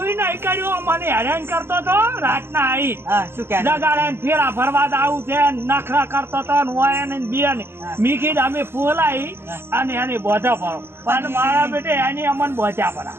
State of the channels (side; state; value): left; late; 0.11 ms